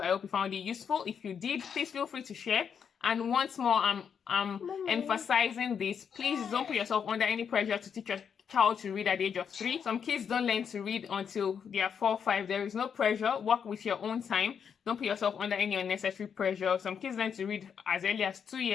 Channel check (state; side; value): quieter; right; 7.2 dB